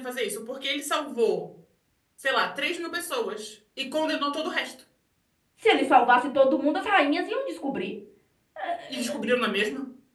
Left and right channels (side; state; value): both; identical; correlation 1.00